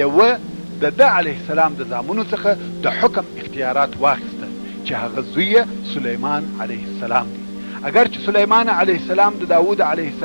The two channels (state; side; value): inverted; both; correlation -1.00